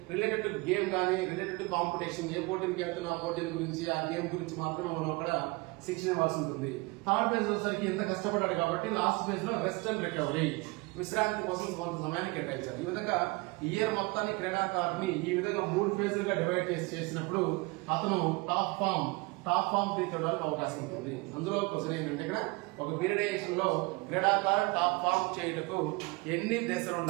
రిలేటెడ్ టు గేమ్ కానీ రిలేటెడ్ టు కాంపిటీషన్, ఏ పోటీకి వెళ్తున్నా ఆ పోటీల గురించి ఆ గేమ్ గురించి మాత్రమే మనం అక్కడ శిక్షణ ఇవ్వాల్సి ఉంటుంది. థర్డ్ ఫేజ్ వచ్చేసరికి ఎంత కష్టపడ్డాడు కాబట్టి లాస్ట్ ఫేజ్ లో రెస్ట్ అండ్ రికవరీ, విశ్రాంతి కోసం కొంత సమయాన్ని కేటాయించారు. ఈ విధంగా ఇయర్ మొత్తాన్ని క్రీడాకారుని ఈ విధంగా 3 ఫేజులుగా డివైడ్ చేసినప్పుడు అతను టాప్ ఫామ్ రీచ్ అవడానికి అవకాశం ఉంటుంది. అందులో క్వశ్చన్ ఏంటంటే ఇక్కడ ఒక పీరియడేషన్ లో క్రీడాకారుడు టాప్ ఫామ్ చేయటకు ఎన్ని దశలు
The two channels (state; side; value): quieter; left; 25.9 dB